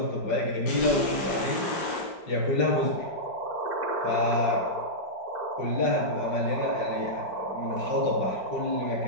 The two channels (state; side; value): late; right; 5.1 ms